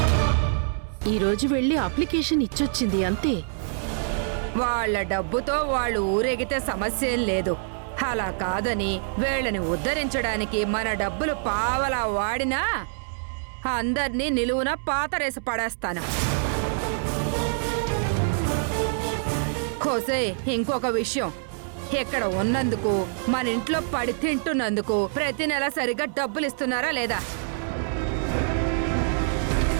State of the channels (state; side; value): silent; left; 61 dB below the other